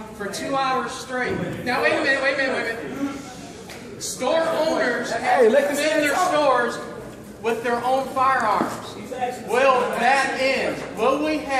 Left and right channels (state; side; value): identical; both; correlation 1.00